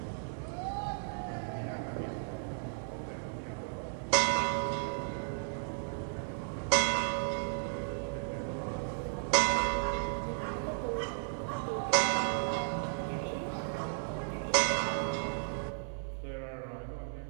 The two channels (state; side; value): silent; left; digital silence